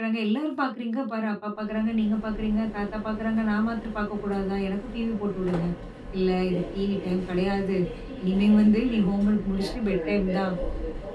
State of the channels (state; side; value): identical; both; correlation 1.00